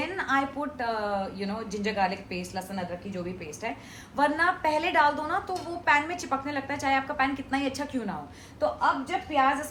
I put ginger garlic paste, लहसुन अदरक की जो भी पेस्ट है। वरना पहले डाल दो ना तो वो पैन में चिपकने लगता है, चाहे आपका पैन कितना ही अच्छा क्यों ना हो। तो अब जब प्याज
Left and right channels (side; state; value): both; identical; correlation 1.00